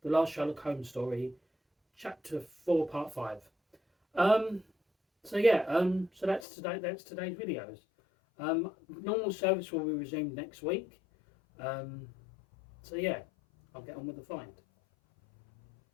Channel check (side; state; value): right; drops out; at 6.5 s